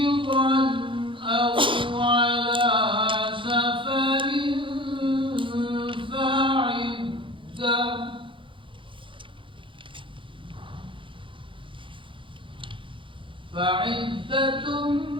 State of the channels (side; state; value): left; late; 0.25 ms